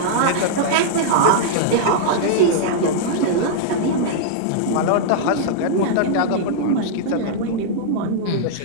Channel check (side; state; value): both; different; correlation -0.02